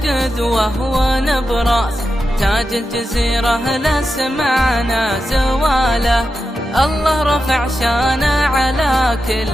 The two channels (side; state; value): both; normal; correlation 0.89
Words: ونبراس، تاج الجزيرة لا سمعنا زواله. الله رفع شانه على